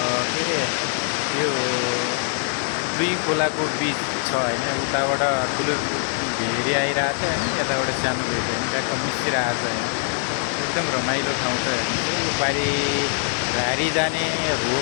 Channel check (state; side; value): silent; right; digital silence